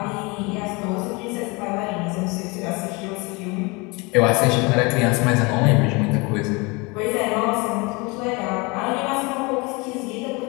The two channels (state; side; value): quieter; right; 27.1 dB